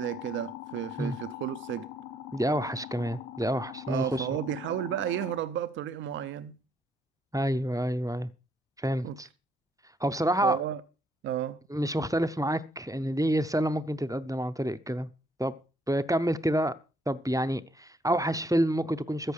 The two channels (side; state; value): both; normal; correlation 0.69